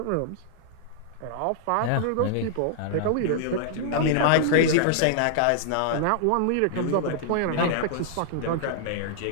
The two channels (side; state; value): both; different; correlation -0.01